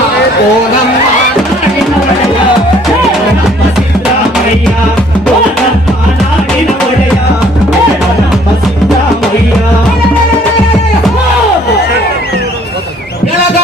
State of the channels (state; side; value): normal; both; correlation 0.60